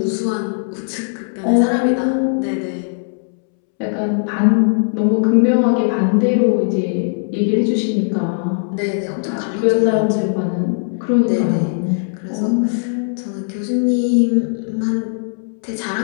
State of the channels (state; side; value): silent; right; 67 dB below the other